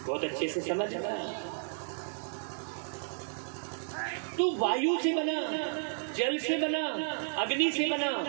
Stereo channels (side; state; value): left; silent; digital silence